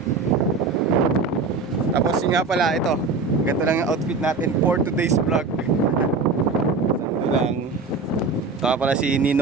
Tapos yun nga pala, ito. Ganda lang yung outfit natin for today's vlog. Santo lang. Ito nga pala si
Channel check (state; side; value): quieter; left; 4.2 dB